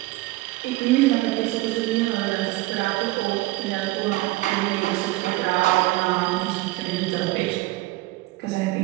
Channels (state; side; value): quieter; left; 19.1 dB